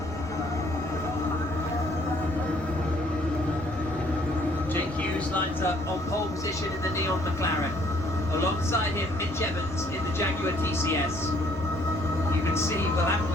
Jake Hughes lines up on pole position in the Neon McLaren. Alongside him, Mitch Evans in the Jaguar TCS. You can see we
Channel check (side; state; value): left; noise; rumble, 20 dB below the sound